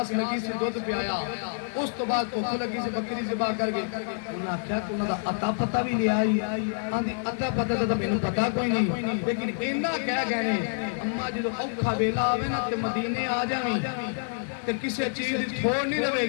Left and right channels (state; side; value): silent; right; digital silence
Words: لگی سی دودھ پیایا اس تو بعد بھوک لگی سی بکری ذبح کر گئی انہوں نے کہا کہ انہوں دا عطا پتہ بھی لے آئی آندھی عطا پتہ تو مینوں پتہ کوئی نہیں لیکن اینا کہہ گئے نے اماں جدو اوکھا ویلا آوے نا تے مدینے آ جاویں تے کسی چیز تھوڑ نہیں رہے